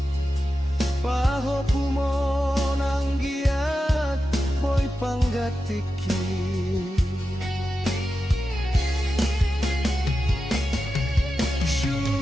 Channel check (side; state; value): both; normal; correlation 0.91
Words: Paho pumon anggiat boy panggatiki